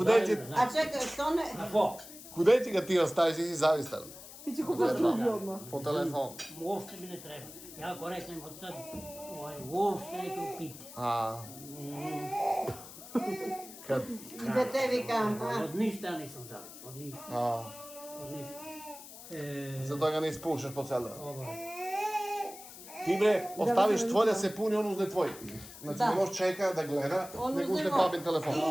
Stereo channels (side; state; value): left; noise; hiss, 15 dB below the sound